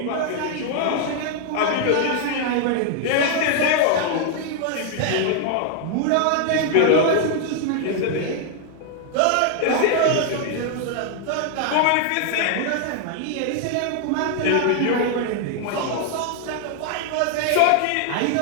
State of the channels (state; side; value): different; both; correlation 0.00